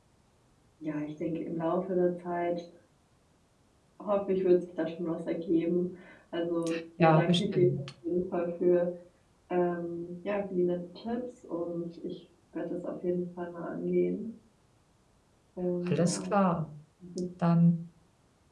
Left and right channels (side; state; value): both; identical; correlation 1.00